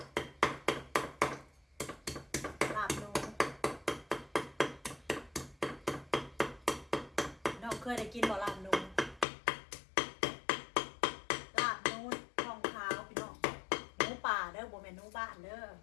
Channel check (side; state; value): right; drops out; at 9.2 s